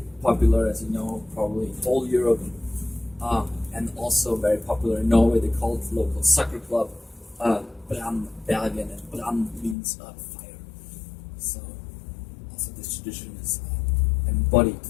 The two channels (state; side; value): drops out; right; at 9.8 s